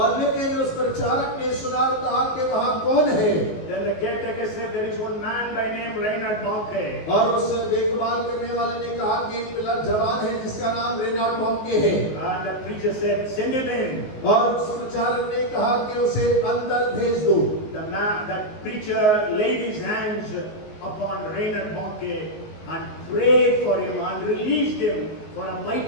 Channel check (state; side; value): late; right; 19 ms